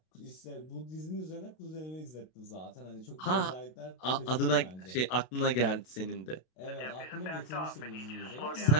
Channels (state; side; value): late; right; 32 ms